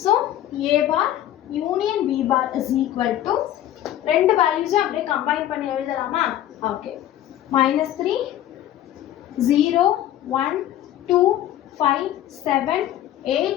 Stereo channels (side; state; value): right; quieter; 12.5 dB